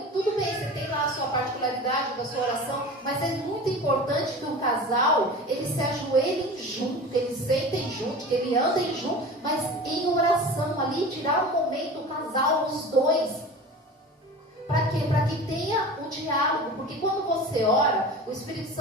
tudo bem, você tem lá a sua particularidade da sua oração, mas é muito importante que o casal, eles se ajoelhem junto, que eles sentem junto, que eles andem junto, mas em oração ali, tirar um momento, o casal, os dois. Para quê? Para que tenha um diálogo, porque quando você ora, o Espírito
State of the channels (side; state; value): both; normal; correlation 0.35